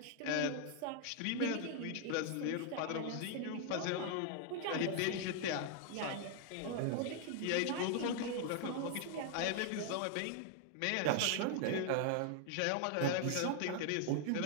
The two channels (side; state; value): both; different; correlation 0.00